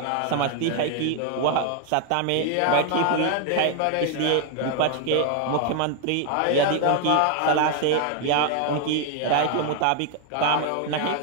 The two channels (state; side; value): different; both; correlation 0.01